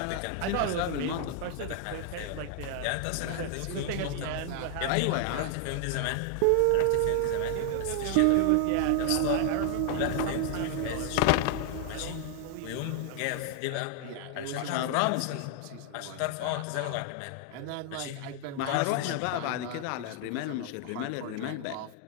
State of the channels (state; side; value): different; both; correlation 0.00